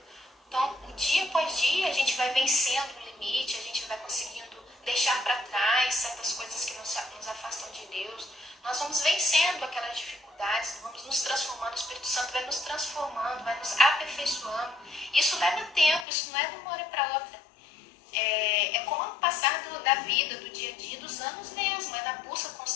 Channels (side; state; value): right; drops out; at 16.1 s